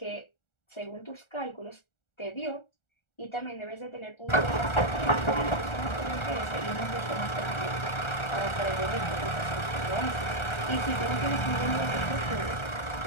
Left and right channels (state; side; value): late; right; 1.4 ms